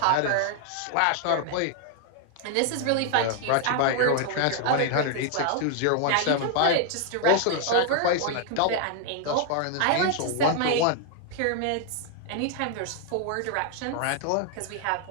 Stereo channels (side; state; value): both; different; correlation 0.00